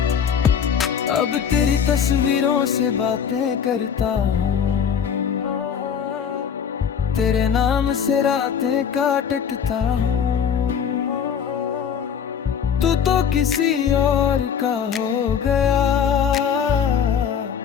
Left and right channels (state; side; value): quieter; right; 7.6 dB